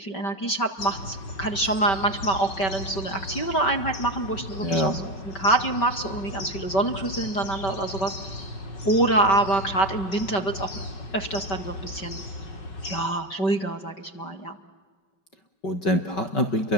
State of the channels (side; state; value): right; late; 5.2 ms